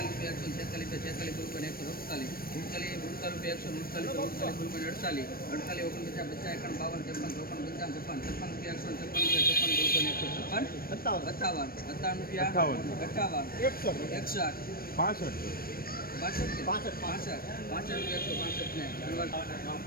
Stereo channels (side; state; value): right; late; 0.43 ms